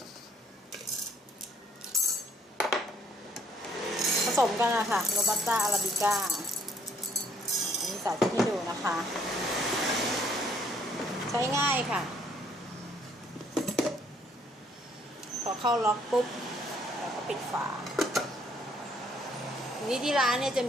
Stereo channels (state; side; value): normal; both; correlation 0.64